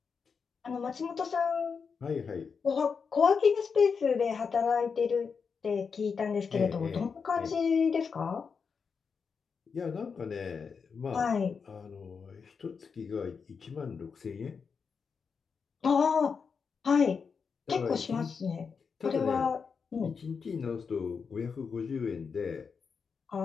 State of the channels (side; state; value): right; quieter; 5.7 dB